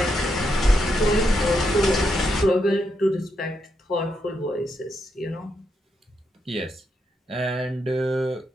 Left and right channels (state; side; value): normal; both; correlation 0.81